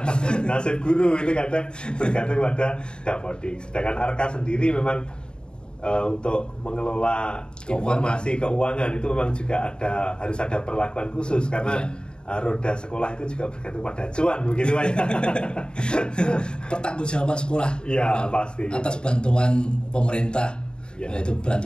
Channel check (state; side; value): late; right; 0.049 ms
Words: Nasib guru itu kadang bergantung pada Dapodik. Sedangkan Arkas sendiri memang untuk mengelola informasi keuangan itu memang juga harus ada perlakuan khusus karena roda sekolah itu juga bergantung pada cuan begitu Pak. Pertanggungjawaban sekolah pasti atas bantuan pemerintah, yaitu